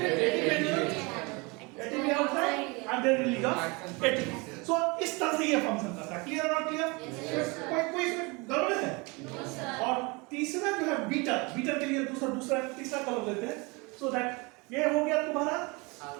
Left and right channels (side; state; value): left; quieter; 27.5 dB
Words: ATP outside and then release of ATP। So इस तरह से ये फंक्शन करता है। क्लियर और क्लियर? कोई इसमें गड़बड़ है? और तीसरा जो है बीटर, बीटर के लिए दूसरा तीसरा कलर लेते हैं। सो दैट ये हो गया तुम्हारा